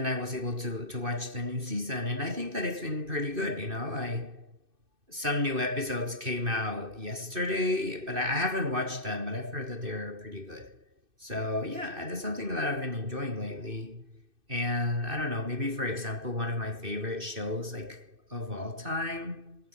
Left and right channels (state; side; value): late; left; 2.6 ms